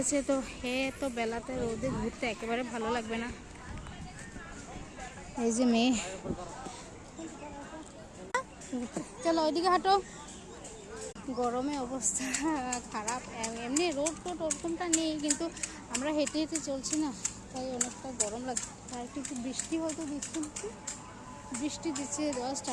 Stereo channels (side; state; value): both; identical; correlation 1.00